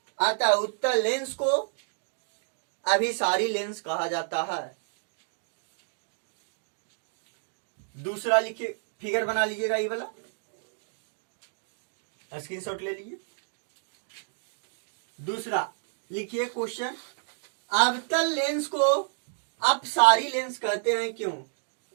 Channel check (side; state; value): left; silent; digital silence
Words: अतः उत्तल लेंस को अभिसारी लेंस कहा जाता है। दूसरा लिखिए, फिगर बना लीजिएगा, ये वाला स्क्रीनशॉट ले लीजिए। दूसरा लिखिए क्वेश्चन, अवतल लेंस को अपसारी लेंस कहते हैं क्यों।